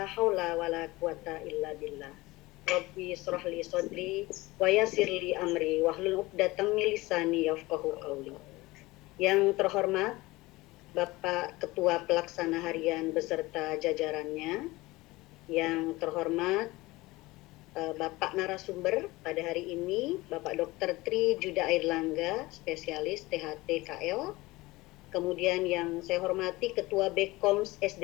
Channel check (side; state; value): right; quieter; 20.6 dB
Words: haula wa la quwata illa billah. Rabbi israh li sadri wa yassir li amri wahlul 'uqdatam min lisani yafqahu qawli. Yang terhormat Bapak Ketua Pelaksana Harian beserta jajarannya, yang terhormat Bapak narasumber pada hari ini, Bapak Dr. Tri Juda Airlangga, spesialis THT KL. Kemudian yang saya hormati Ketua Bekoms